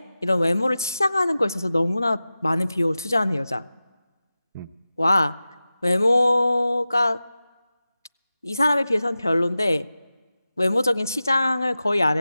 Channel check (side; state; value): both; inverted; correlation -0.95